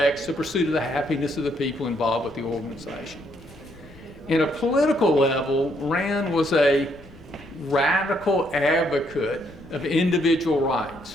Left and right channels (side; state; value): left; noise; rumble, 22 dB below the sound